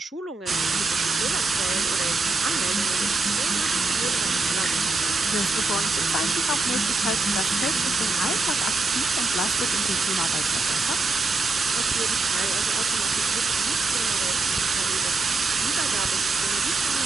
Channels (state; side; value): quieter; left; 3.6 dB